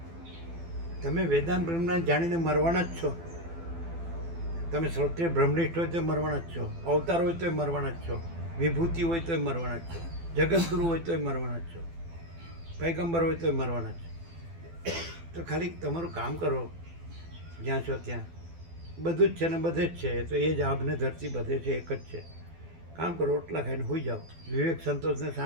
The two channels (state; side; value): late; left; 12 ms